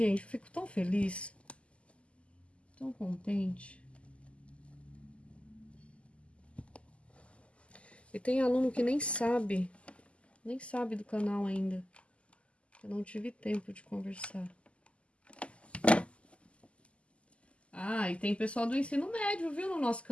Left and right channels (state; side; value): late; right; 0.057 ms